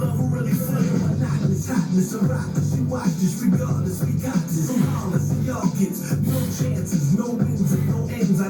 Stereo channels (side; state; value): both; identical; correlation 1.00